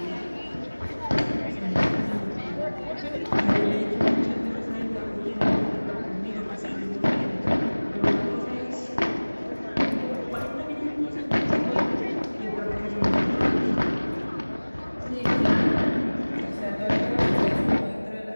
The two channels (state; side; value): inverted; both; correlation -1.00